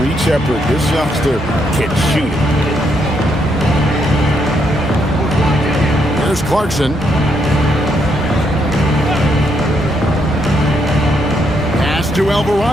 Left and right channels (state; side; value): normal; both; correlation 0.76